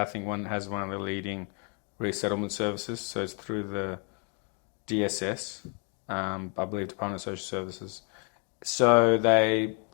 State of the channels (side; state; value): right; quieter; 35.8 dB